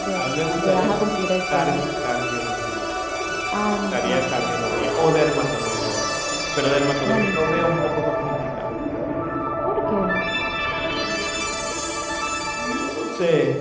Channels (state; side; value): identical; both; correlation 1.00